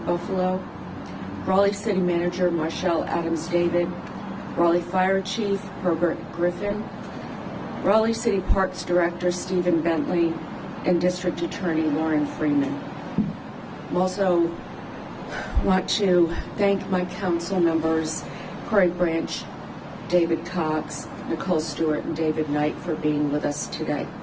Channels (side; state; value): both; identical; correlation 1.00